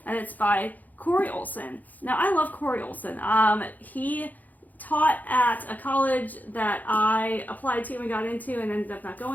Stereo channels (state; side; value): late; right; 0.081 ms